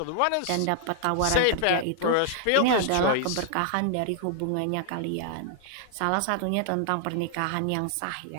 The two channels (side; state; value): both; different; correlation -0.01